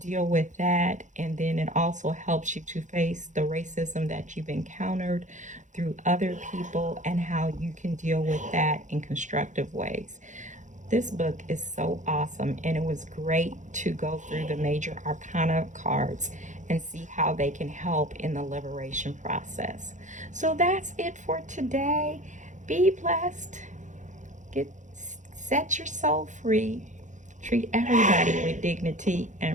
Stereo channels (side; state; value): left; late; 0.36 ms